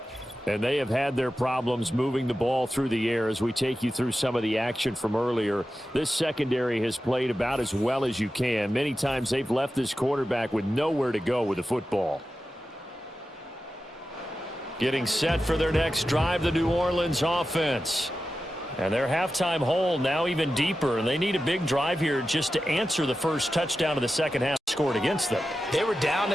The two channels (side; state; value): both; normal; correlation 0.92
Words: And they have had their problems moving the ball through the air as we take you through some of the action from earlier. This secondary has played about as well as you can. Many times they've left this quarterback with nowhere to go with the football. Getting set for their next drive, the New Orleans offense. And their halftime hole now even deeper, and they need a big drive here just to answer the first touchdown of the second half scored against them. They were down